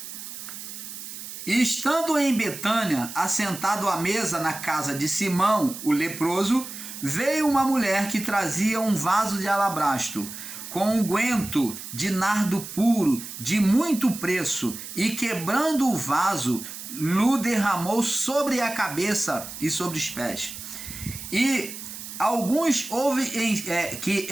E estando em Betânia, assentado à mesa na casa de Simão, o leproso, veio uma mulher que trazia um vaso de alabastro, com unguento de nardo puro, de muito preço, e quebrando o vaso, lhe derramou sobre a cabeça e sobre os pés. E alguns que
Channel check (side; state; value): right; noise; hiss, 11 dB below the sound